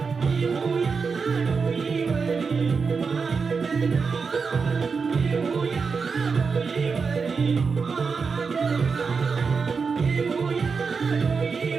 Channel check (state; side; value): quieter; left; 5.2 dB